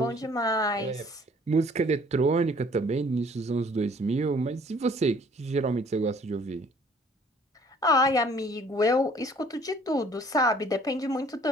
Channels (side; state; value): both; normal; correlation 0.56